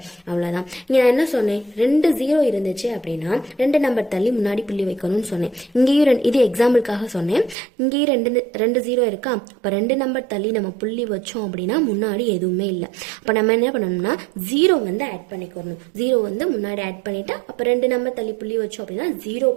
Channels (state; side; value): drops out; left; at 7.6 s